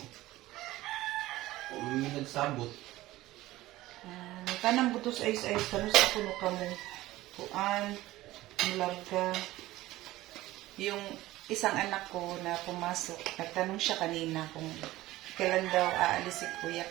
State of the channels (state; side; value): quieter; left; 17.0 dB